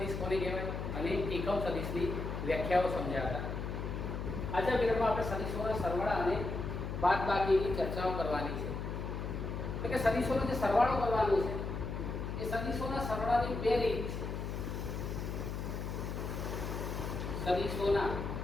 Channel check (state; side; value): noise; left; hum, 4 dB below the sound